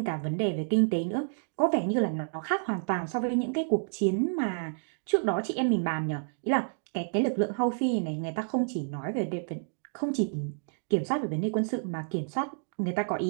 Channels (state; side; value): silent; left; digital silence